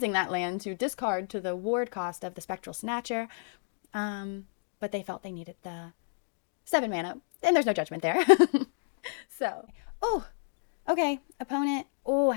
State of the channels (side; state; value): right; silent; digital silence